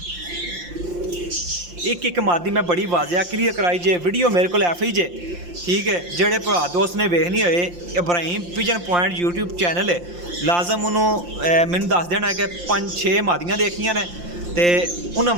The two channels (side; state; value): left; late; 5.7 ms